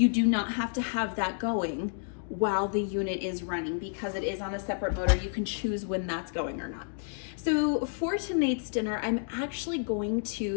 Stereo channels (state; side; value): silent; right; digital silence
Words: do not have to have that going while the unit is running because it is on a separate motor. You can choose when that's going or not. So for tonight's dinner, I'm actually going